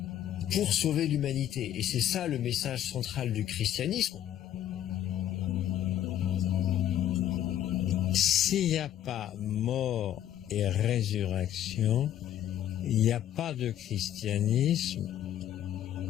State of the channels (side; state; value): right; quieter; 11.3 dB